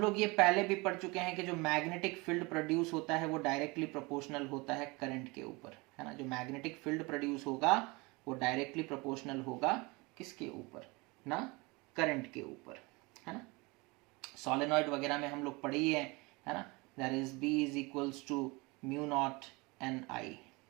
लोग ये पहले भी पढ़ चुके हैं कि जो मैग्नेटिक फील्ड प्रोड्यूस होता है वो डायरेक्टली प्रोपोर्शनल होता है करंट के ऊपर, है ना। जो मैग्नेटिक फील्ड प्रोड्यूस होगा वो डायरेक्टली प्रोपोर्शनल होगा किसके ऊपर? ना करंट के ऊपर, है ना। सोलेनॉइड वगैरह में हम लोग पढ़े ही है ना। That is B is equals to mu naught N I,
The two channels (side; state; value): left; quieter; 25.6 dB